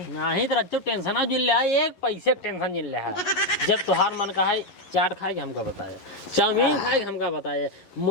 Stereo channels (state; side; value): late; right; 11 ms